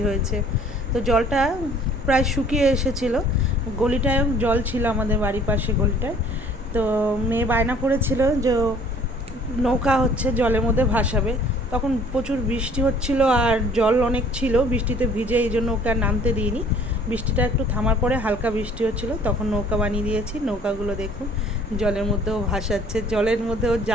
হয়েছে। তো জলটা প্রায় শুকিয়ে এসেছিলো। গলিটায় জল ছিল, আমাদের বাড়ির পাশে গলিটায়। তো মেয়ে বায়না করেছিল যে নৌকা হচ্ছে জলের মধ্যে ভাসাবে। তখন প্রচুর বৃষ্টি হচ্ছিল আর জল অনেক ছিল, বৃষ্টিতে ভিজে, এই জন্য ওকে আর নামতে দিইনি। বৃষ্টিটা একটু থামার পরে হালকা বৃষ্টি হচ্ছিল, তখন নৌকা বানিয়ে দিয়েছি। নৌকাগুলো দেখুন জলের মধ্যেও ভাসাচ্ছে, জলের মধ্যেও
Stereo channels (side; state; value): both; normal; correlation 0.54